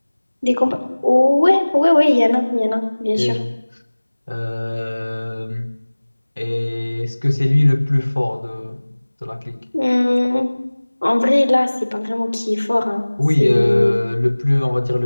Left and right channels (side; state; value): both; inverted; correlation -1.00